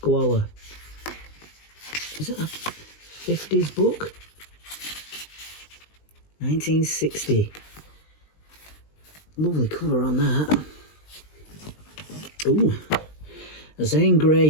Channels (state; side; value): late; right; 20 ms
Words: Is it a 50s book? 1960. Lovely cover on that. Ooh. Zane